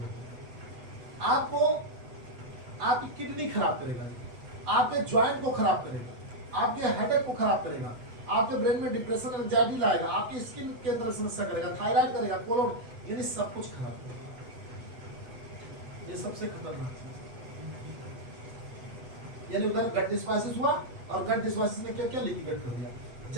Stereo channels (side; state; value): left; late; 8.0 ms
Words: होगी। आपको आपकी किडनी खराब करेगा, आपके ज्वाइंट को खराब करेगा, आपके हेडेक को खराब करेगा, आपके ब्रेन में डिप्रेशन एंजाइटी लाएगा, आपकी स्किन के अंदर समस्या करेगा, थायराइड करेगा, कोलोन, यानी सब कुछ खराब करेगा। ये सबसे खतरनाक चीज, यानी उधर गट डिस्बासिस हुआ और गट डिस्बासिस ने क्या क्या लीकी गट कर दिया।